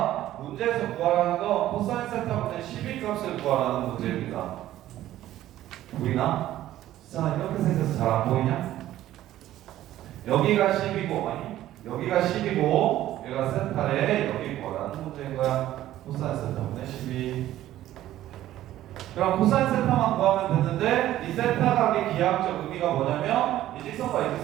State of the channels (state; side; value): quieter; left; 13.7 dB